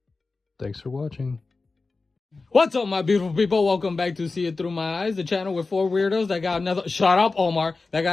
Thanks for watching. What's up, my beautiful people? Welcome back to See It Through My Eyes, the channel with four weirdos that got nothing. Shut up, Omar. That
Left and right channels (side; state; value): right; quieter; 3.9 dB